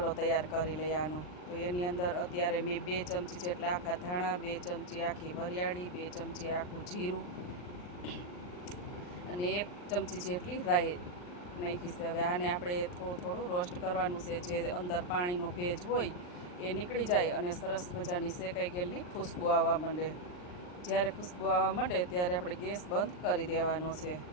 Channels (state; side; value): late; right; 39 ms